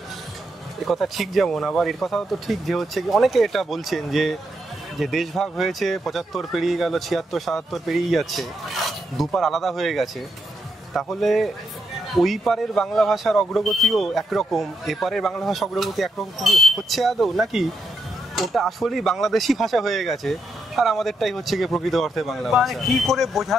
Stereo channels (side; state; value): both; normal; correlation 0.81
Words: এ কথা ঠিক, যেমন আবার এর কথাও তো ঠিক যে হচ্ছে কি অনেকে এটা বলছেন যে যে দেশভাগ হয়েছে 75 পেরিয়ে গেল, 76 77 পেরিয়ে যাচ্ছে, দুপার আলাদা হয়ে গেছে, তাহলে ওই পারের বাংলা ভাষার অগ্রগতিও একরকম, এপারের বাংলা ভাষা অগ্রগতি একরকম হচ্ছে আদৌ, নাকি ওটা আসলেই বাংলাদেশি ভাষা হয়ে গেছে আর আমাদেরটাই হচ্ছে গিয়ে প্রকৃত অর্থে বাংলা মানে ভাষা? কি করে